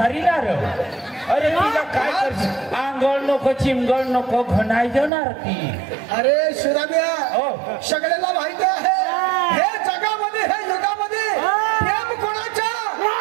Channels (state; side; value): drops out; left; at 5.1 s